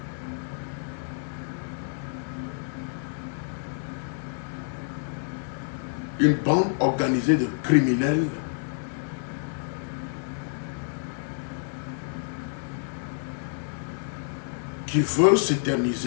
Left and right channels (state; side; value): silent; right; digital silence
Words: Une bande organisée de criminels qui veut